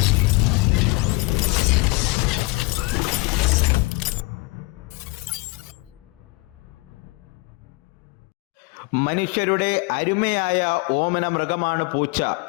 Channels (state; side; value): quieter; right; 25.2 dB